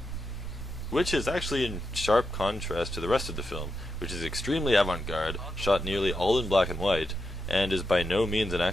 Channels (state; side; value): normal; both; correlation 0.96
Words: which is actually in sharp contrast to the rest of the film, which is extremely avant-garde, shot nearly all in black and white, and is by no means an